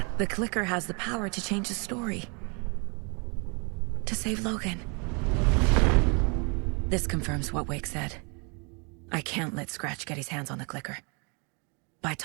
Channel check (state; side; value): quieter; left; 33.7 dB